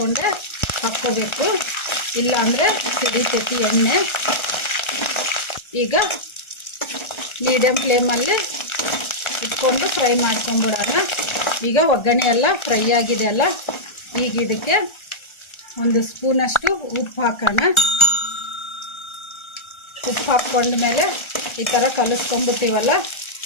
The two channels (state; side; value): late; right; 1.3 ms